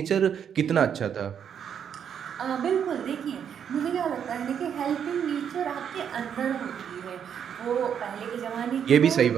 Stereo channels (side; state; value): left; quieter; 8.2 dB